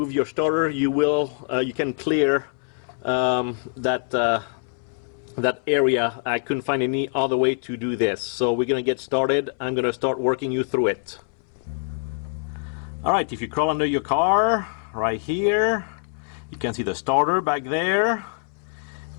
your starter, you can clear that area. I couldn't find any other way to do this. So we're going to get started. I'm going to start working you through it. Alright, if you crawl under your car, right here, you can see the starter back there.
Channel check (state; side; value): silent; right; 62 dB below the other